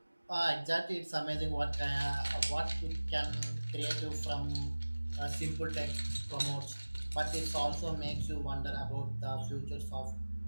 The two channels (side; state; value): both; inverted; correlation -1.00